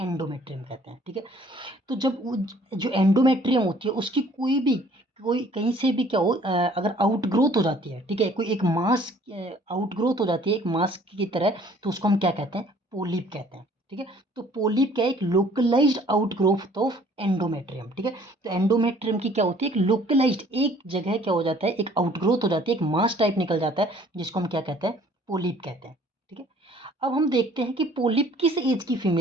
कहते हैं। ठीक है। तो जब वो जो एंडोमेट्रियम होती है उसकी कोई कहीं से भी क्या हो, अगर आउटग्रोथ हो जाती है, ठीक है, कोई एक मास आउटग्रोथ हो जाती है एक मास की तरह, तो उसको हम क्या कहते हैं? पोलिप कहते हैं। ठीक है। तो पोलिप क्या है? एक लोकलाइज्ड आउटग्रोथ ऑफ एंडोमेट्रियम। ठीक है। तो एंडोमेट्रियम की क्या होती है? एक लोकलाइज्ड एक जगह क्या हो जाता है, एक आउटग्रोथ हो जाती है, एक मास टाइप निकल जाता है, जिसको हम क्या कहते हैं? पोलिप कहते हैं। ठीक है। अब हम देखते हैं कि पोलिप किस एज की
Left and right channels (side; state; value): both; normal; correlation 0.56